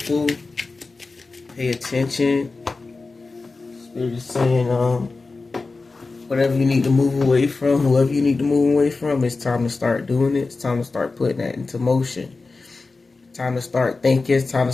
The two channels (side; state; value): right; quieter; 3.8 dB